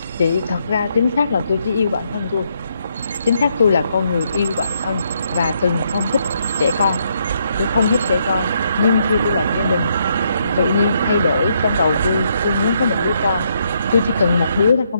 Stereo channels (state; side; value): inverted; both; correlation -0.75